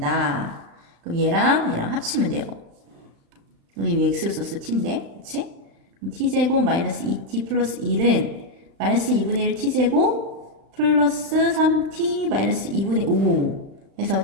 그럼 얘랑 합치면 돼요. 여기 x를 썼어. t인데. 그치? 그럼 t제곱 마이너스 2t 플러스 1은 마이너스 2분의 1 t제곱 플러스 3t 마이너스 2분의 5 해서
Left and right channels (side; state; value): left; late; 36 ms